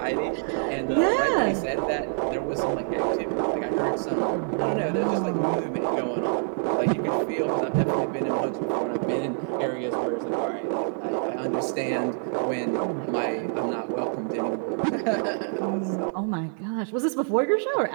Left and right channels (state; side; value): silent; left; 61 dB below the other